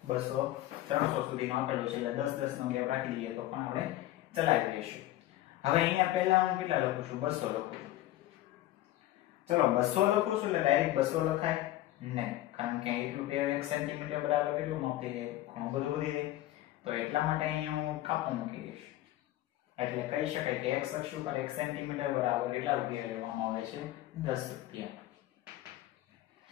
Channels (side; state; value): right; quieter; 15.2 dB